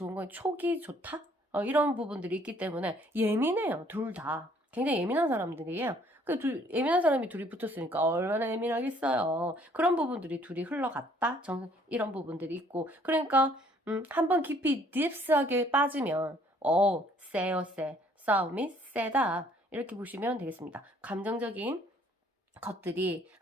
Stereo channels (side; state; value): both; normal; correlation 0.61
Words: 건 촉이 좋다? 이런 부분들이 있기 때문에 예민해요. 둘 다. 굉장히 예민한 사람들이에요. 예민한 사람이 둘이 붙었으니까 얼마나 예민하겠어요. 그런 부분들이 둘이 흘러갔다? 이런 부분들이 있고. 그러니까 한번 깊이 딥스하게 빠지면 세요. 싸움이 세다. 이렇게 보시면 되겠습니다. 감정적인 것들이